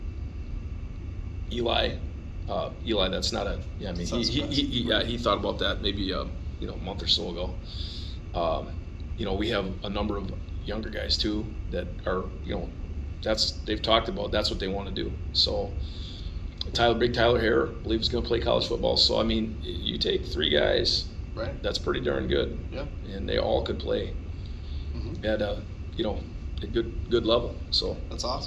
Eli, that's not a, yeah, I mean, he thought about that maybe, a month or so ago. We have a number of younger guys too that are, they've talked about, that's what they want to do. So Big Tyler Hare believes he's going to play college football. So, I mean, you take 3 guys, right? That's pretty darn good. Yeah. And they all could play at a good level. So that's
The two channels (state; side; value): identical; both; correlation 1.00